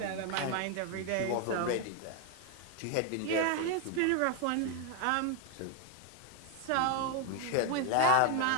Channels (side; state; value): both; different; correlation 0.01